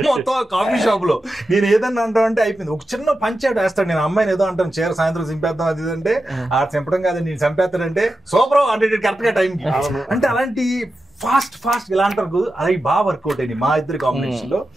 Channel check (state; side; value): normal; both; correlation 0.91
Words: మొత్తం కాఫీ షాప్ లో. నేను ఏదన్నా అంటానంటే అయిపోయింది. ఒక చిన్న పంచాడు వేస్తాడు, నేను అమ్మాయిని ఏదో అంటాను చీర సాయంత్రం చింపేద్దాం అది అంటే ఆ చంపడం కాదు నేను చంపేస్తాడంటే సూపర్ అంటే కరెక్ట్ గా టైంకి. అంటే అలాంటి ఫాస్ట్ ఇలా అంటారు అది బాగా వర్కౌట్ అయింది మా ఇద్దరి కాంబినేషన్ లో.